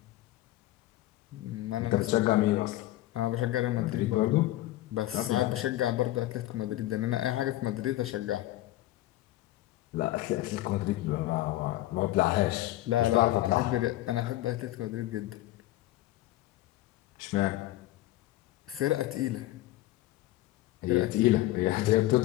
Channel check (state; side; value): quieter; right; 16.0 dB